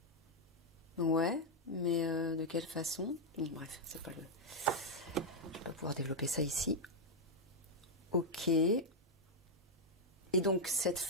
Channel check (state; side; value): normal; both; correlation -0.02